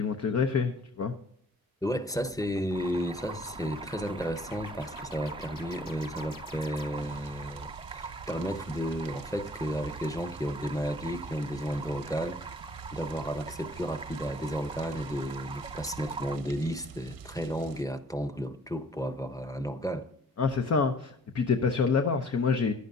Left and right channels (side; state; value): both; normal; correlation 0.57